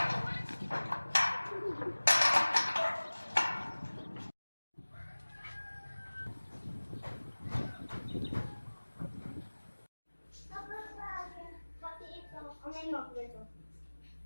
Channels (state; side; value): inverted; both; correlation -1.00